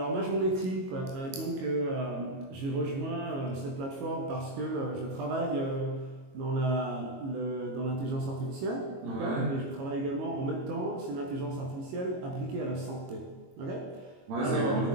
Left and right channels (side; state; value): left; late; 22 ms